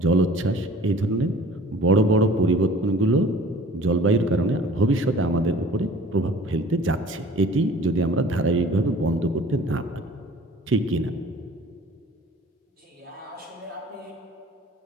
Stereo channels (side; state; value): both; normal; correlation 0.47